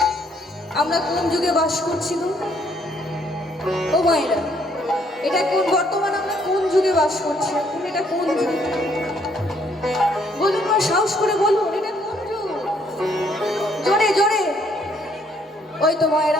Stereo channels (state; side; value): normal; both; correlation 0.67